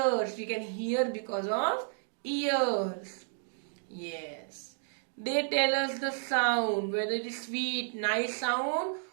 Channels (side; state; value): left; silent; digital silence